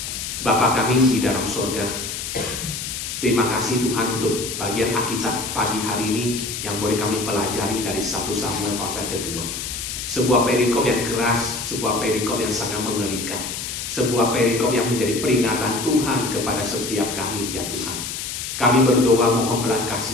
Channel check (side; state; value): left; noise; hiss, 5 dB below the sound